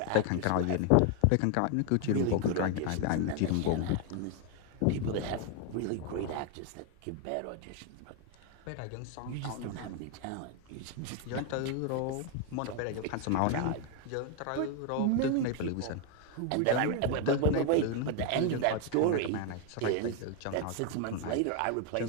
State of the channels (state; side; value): different; both; correlation 0.01